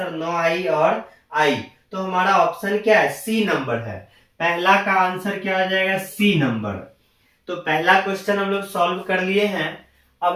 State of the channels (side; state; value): both; identical; correlation 1.00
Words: 9I और I। तो हमारा ऑप्शन क्या है? सी नंबर है। पहला का आंसर क्या हो जाएगा? C number. तो पहला क्वेश्चन हम लोग सॉल्व कर लिए हैं।